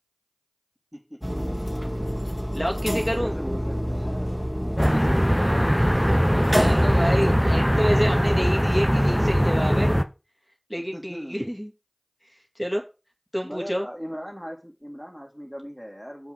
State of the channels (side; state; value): both; identical; correlation 1.00